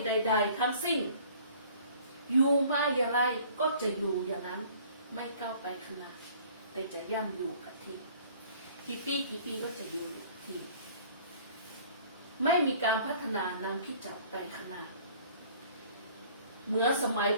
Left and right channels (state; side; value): inverted; both; correlation -0.53